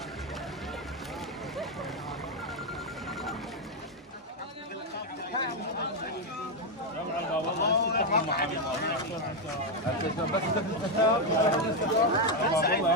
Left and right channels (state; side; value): normal; both; correlation 0.03